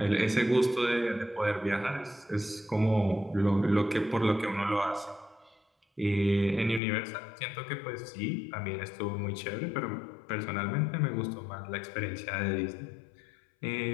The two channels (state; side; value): drops out; right; at 6.8 s